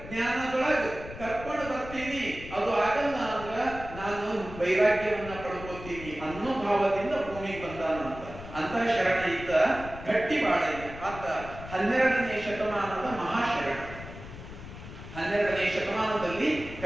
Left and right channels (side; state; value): left; noise; rumble, 13 dB below the sound